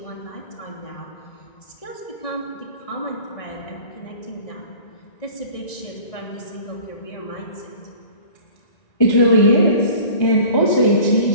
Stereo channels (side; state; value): right; late; 1.9 ms